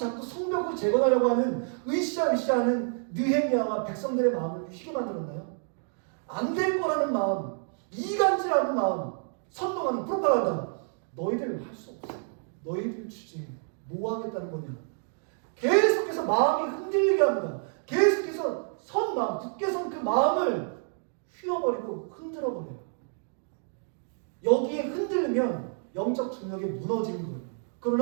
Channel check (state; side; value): silent; left; 56 dB below the other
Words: 성벽을 재건하려고 하는 으쌰으쌰하는 느헤미야와 백성들의 마음을 휘게 만들었나요? 안 될 거라는 마음, 이간질하는 마음, 선동하는 프로파간다. 너희들 할 수 없어. 너희들 주제 뭐 하겠다는 거냐. 계속해서 마음이 흔들리게 합니다. 계속해서 선 마음, 굳게 선 그 마음을 휘어버리고 흔들어버려요. 여기에 흔들리면 영적 중력이 무너지는 거예요.